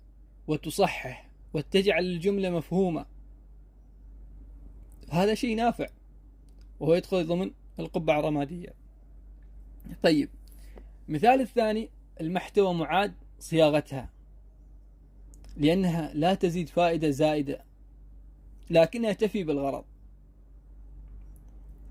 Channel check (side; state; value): both; identical; correlation 1.00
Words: وتصحح وتجعل الجملة مفهومة. هذا شيء نافع، وهو يدخل ضمن القبعة الرمادية. طيب، مثال الثاني: المحتوى معاد صياغتها، لأنها لا تزيد فائدة زائدة لكنها تفي بالغرض.